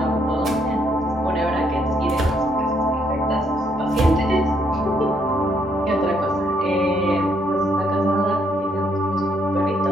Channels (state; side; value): normal; both; correlation 0.72